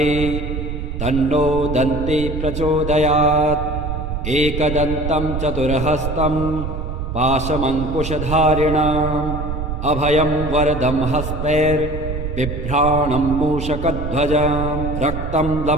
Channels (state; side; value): noise; right; rumble, 4 dB below the sound